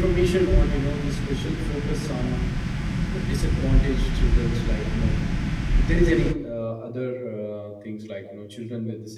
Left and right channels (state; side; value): identical; both; correlation 1.00